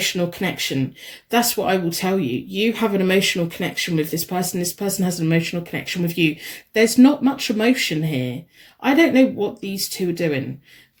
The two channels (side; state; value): both; identical; correlation 1.00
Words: connection. That's what I will tell you. You have an emotional connection with this person. This person has an emotional connection with you. There's not much emotion here. I don't know what these two are doing,